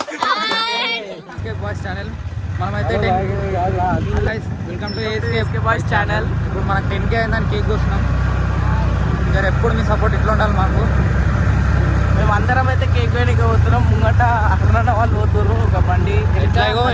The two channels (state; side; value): identical; both; correlation 1.00